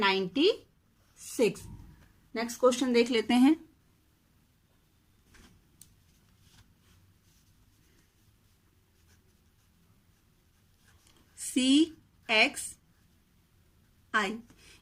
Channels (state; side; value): identical; both; correlation 1.00